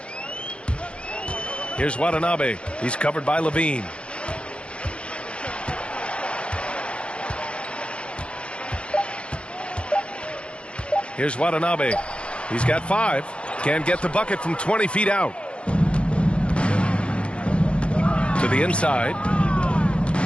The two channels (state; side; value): late; right; 0.058 ms